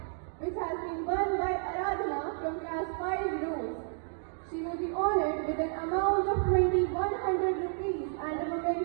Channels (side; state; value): left; silent; 57 dB below the other